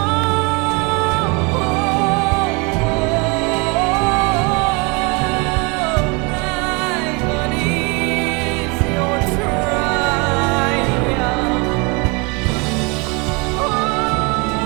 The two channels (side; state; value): left; quieter; 29.9 dB